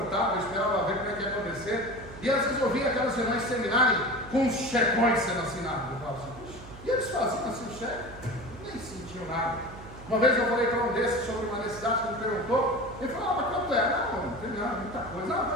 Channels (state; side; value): noise; right; hum, 16 dB below the sound